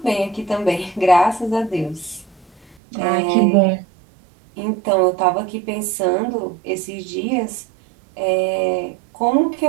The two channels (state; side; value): drops out; left; at 2.8 s